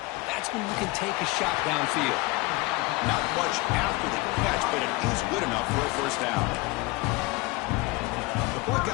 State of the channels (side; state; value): right; quieter; 22.9 dB